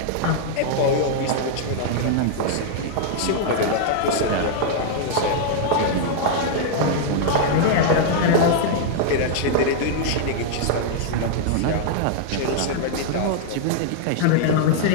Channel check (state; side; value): different; both; correlation -0.01